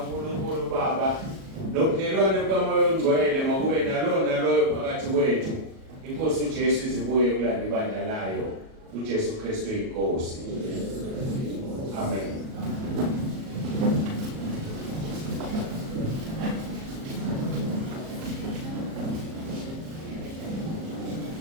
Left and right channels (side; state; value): left; late; 37 ms